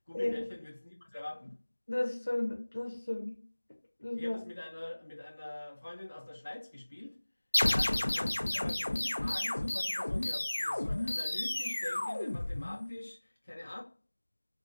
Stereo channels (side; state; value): both; inverted; correlation -1.00